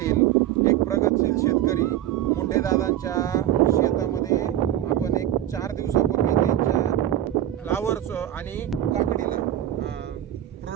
एक प्रगतशील शेतकरी मुंडेदादांच्या शेतामध्ये. आपण एक 4 दिवसापूर्वी त्यांच्या फ्लावरचं आणि काकडीला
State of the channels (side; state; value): left; quieter; 12.5 dB